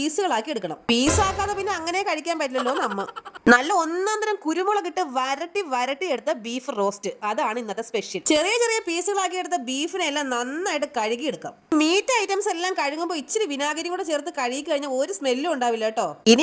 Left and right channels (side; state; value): both; identical; correlation 1.00